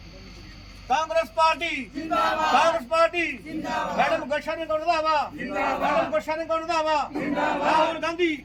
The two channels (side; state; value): both; identical; correlation 1.00